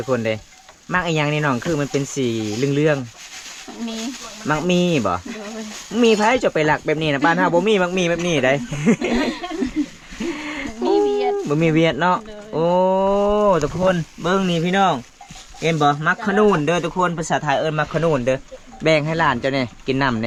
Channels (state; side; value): identical; both; correlation 1.00